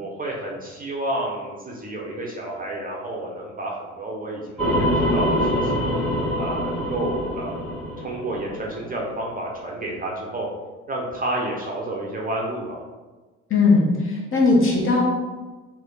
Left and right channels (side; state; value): both; normal; correlation 0.39